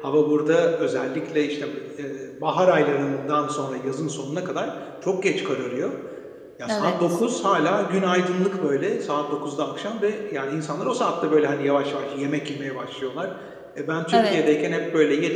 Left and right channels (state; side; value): identical; both; correlation 1.00